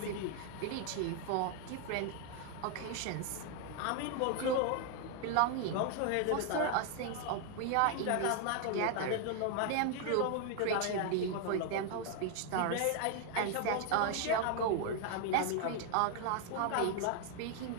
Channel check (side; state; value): both; different; correlation 0.00